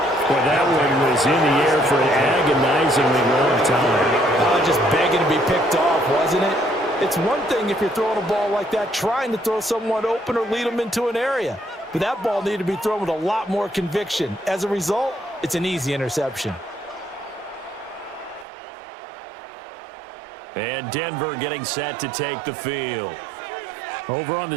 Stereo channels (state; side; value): drops out; left; at 18.4 s